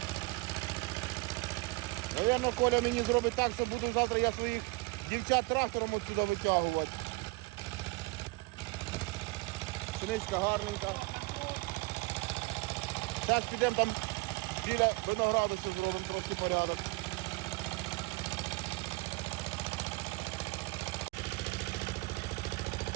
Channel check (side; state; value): left; quieter; 23.5 dB